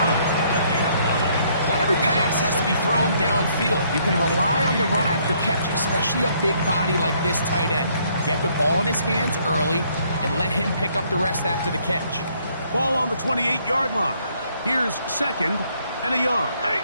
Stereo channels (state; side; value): inverted; both; correlation -0.67